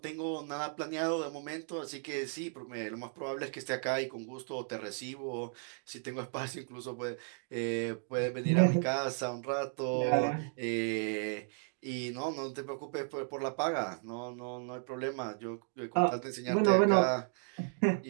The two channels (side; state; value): left; silent; 55 dB below the other